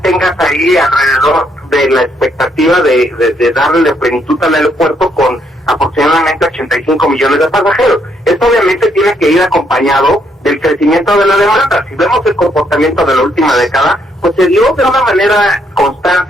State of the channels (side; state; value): both; normal; correlation 0.72